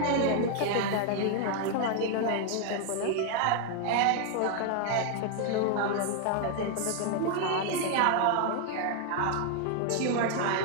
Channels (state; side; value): different; both; correlation 0.00